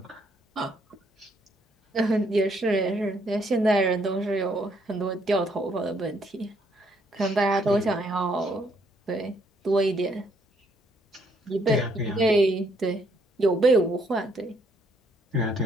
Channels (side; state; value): both; normal; correlation 0.69